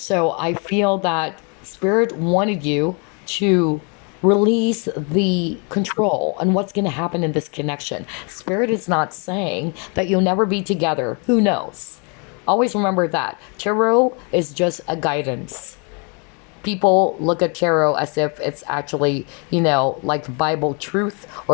I feel that Spirit wanted you to release the control on what's going to happen in this connection. Spirit is not saying that you'll never be together. Who knows? Always remember that. Tarot is just a guidance. People look at tarot as if it's actually, like Bible truth,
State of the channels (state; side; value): quieter; right; 35.1 dB